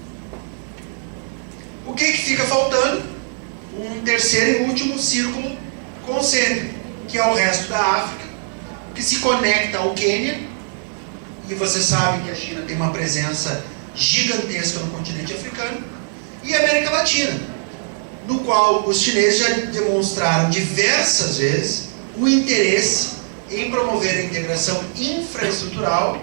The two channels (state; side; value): silent; left; digital silence